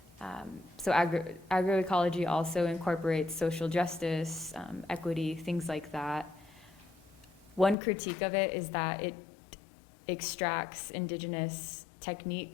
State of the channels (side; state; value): right; drops out; at 7.8 s